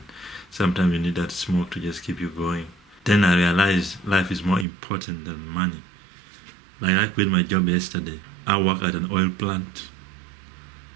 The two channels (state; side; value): drops out; left; at 4.7 s